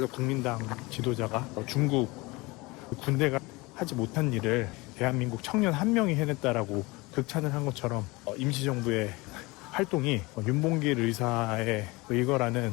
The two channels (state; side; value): quieter; right; 23.7 dB